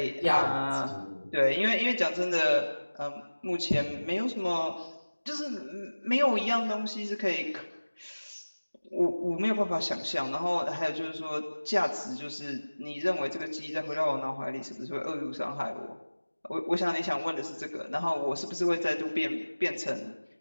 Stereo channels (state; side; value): inverted; both; correlation -1.00